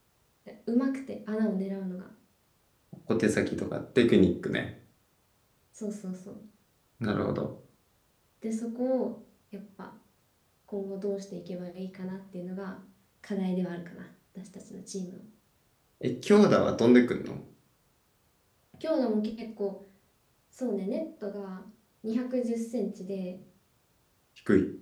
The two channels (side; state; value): both; identical; correlation 1.00